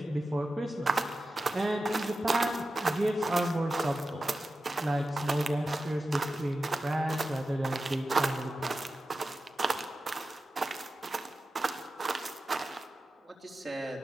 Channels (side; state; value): both; normal; correlation 0.93